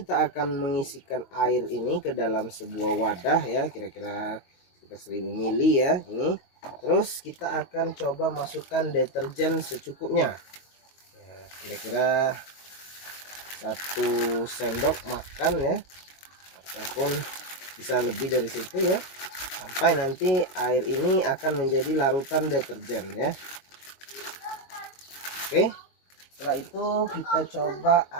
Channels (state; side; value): late; right; 22 ms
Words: akan mengisikan air ini ke dalam sebuah wadah ya, kira-kira sekitar 1000 ml ya ini. Terus kita akan coba masukkan deterjen secukupnya ya, kira-kira 1 sendok makan ya, ataupun bisa lebih dari situ ya, sampai nanti air ini akan menjadi larutan deterjen ya. Oke, setelah itu kita coba